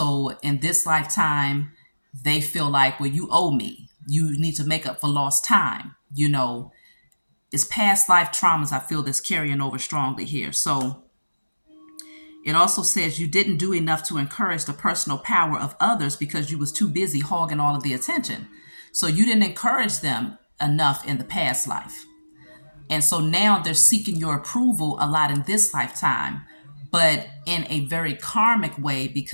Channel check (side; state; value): both; inverted; correlation -1.00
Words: in this lifetime, they feel like, well, you owe me. You need to make up for lost time. It's past life traumas, I feel, that's carrying over strongly here. So it also says you didn't do enough to encourage the personal power of others because you was too busy hogging all of the attention. So you didn't encourage them enough in the past life. And so now they're seeking your approval a lot in this lifetime, but in a very karmic way,